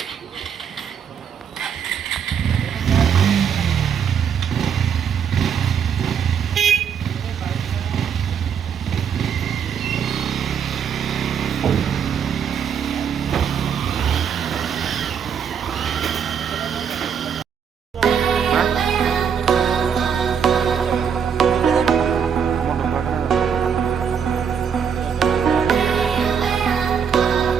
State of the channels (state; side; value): quieter; left; 7.3 dB